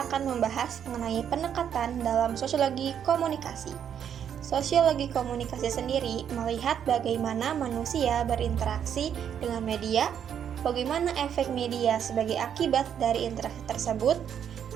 akan membahas mengenai pendekatan dalam sosiologi komunikasi. Sosiologi komunikasi sendiri melihat bagaimana manusia berinteraksi dengan media, bagaimana efek media sebagai akibat dari interaksi tersebut,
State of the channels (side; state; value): left; quieter; 8.7 dB